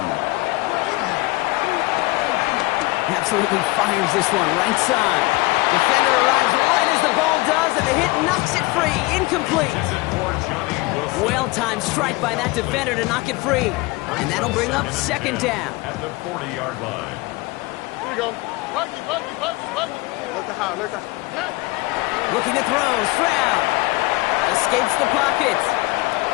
him. Absolutely fires this one right side. Defender arrives right as the ball does, and the hit knocks it free. Incomplete. Well-timed strike by that defender to knock it free. And that'll bring up second down. At the 40-yard line. Here we go. Look to high, look to high. Looking to throw, Stroud. Escapes the pocket.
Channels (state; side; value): quieter; right; 22.4 dB